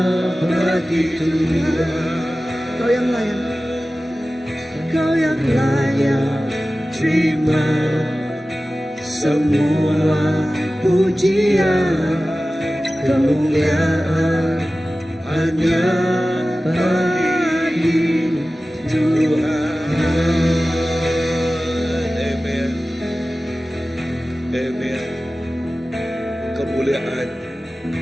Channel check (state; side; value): normal; both; correlation 0.96